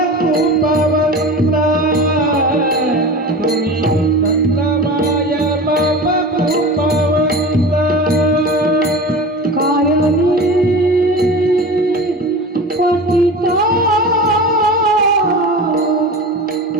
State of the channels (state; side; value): normal; both; correlation 0.32